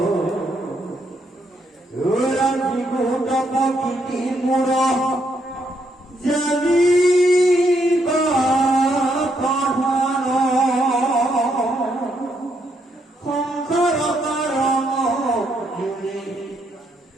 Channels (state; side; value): normal; both; correlation 0.76